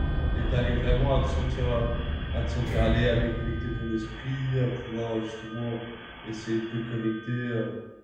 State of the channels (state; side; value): identical; both; correlation 1.00